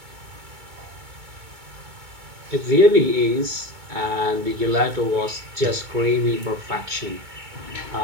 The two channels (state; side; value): late; left; 2.2 ms